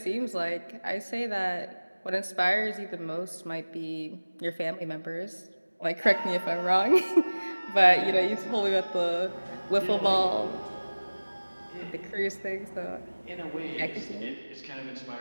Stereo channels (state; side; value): inverted; both; correlation -1.00